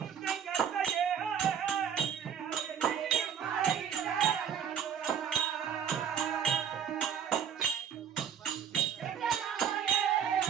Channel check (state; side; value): quieter; left; 8.2 dB